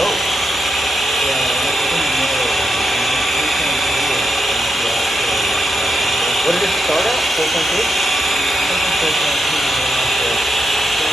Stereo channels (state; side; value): normal; both; correlation 0.84